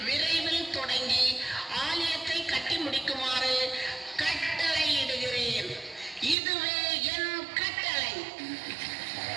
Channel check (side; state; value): left; drops out; at 6.4 s